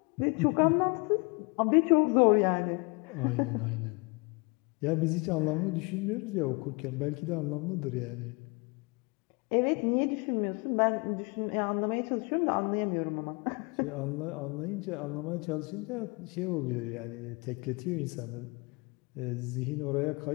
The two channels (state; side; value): quieter; right; 29.6 dB